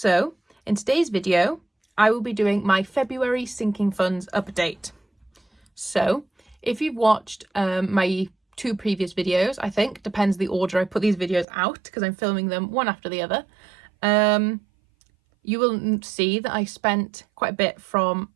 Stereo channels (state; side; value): drops out; left; at 11.5 s